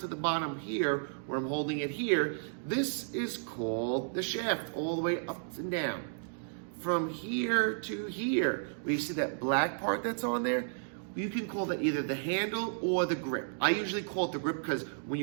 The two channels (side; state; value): left; silent; digital silence